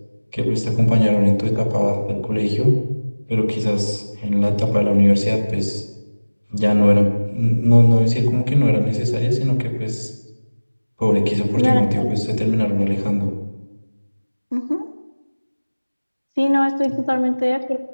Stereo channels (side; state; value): both; inverted; correlation -1.00